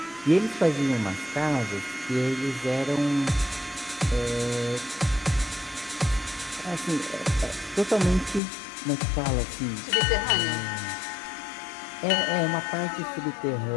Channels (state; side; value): drops out; right; at 8.4 s